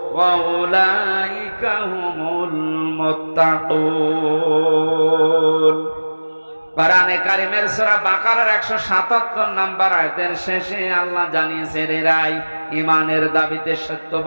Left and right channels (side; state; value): both; inverted; correlation -1.00